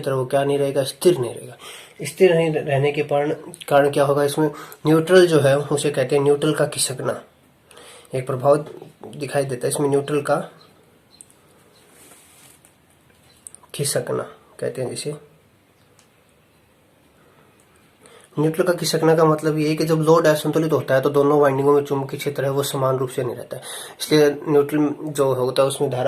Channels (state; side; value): identical; both; correlation 1.00